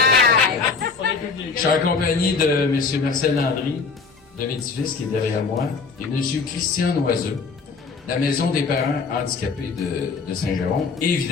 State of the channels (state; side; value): quieter; right; 4.9 dB